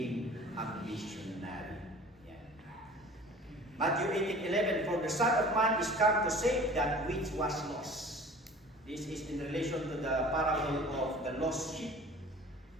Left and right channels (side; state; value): both; normal; correlation 0.44